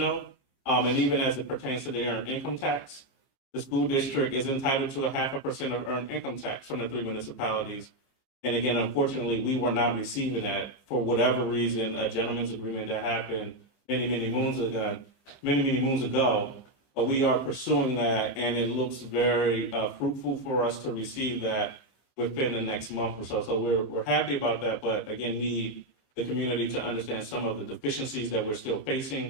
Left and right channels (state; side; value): late; right; 15 ms